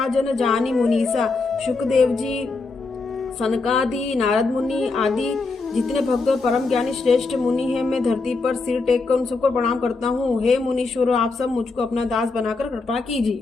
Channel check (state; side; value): quieter; right; 3.9 dB